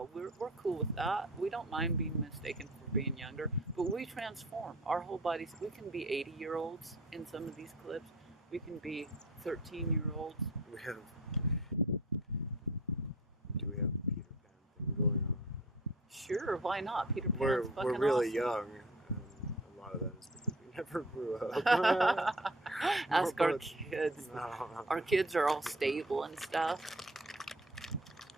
cool with that. We don't mind being mistaken for being younger. But we transform. Our whole bodies, we can be 80-year-olds in some of these clips. We can be 13-year-olds. we have. Do we have the Peter Pan thing going on? Sure, why not? Peter Pan's We're fucking really awesome. young. And a lot of that is because we never grew up. Ask our kids. No. Our kids are all stable and stuff.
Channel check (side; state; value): both; normal; correlation 0.45